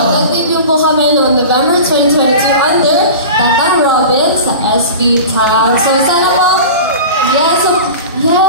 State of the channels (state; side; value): inverted; both; correlation -0.34